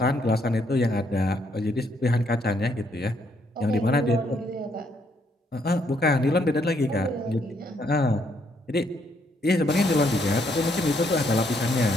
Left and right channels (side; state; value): both; normal; correlation 0.71